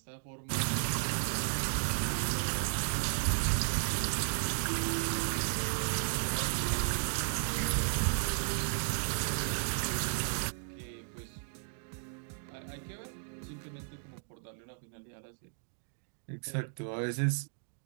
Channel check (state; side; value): silent; left; digital silence